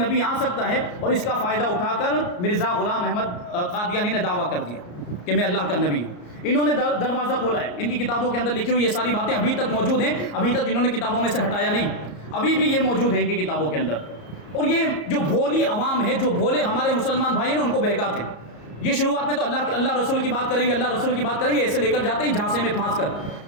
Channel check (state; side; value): late; right; 34 ms